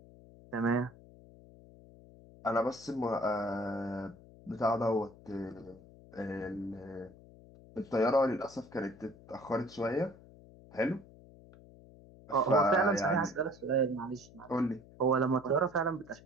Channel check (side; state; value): left; noise; hum, 22 dB below the sound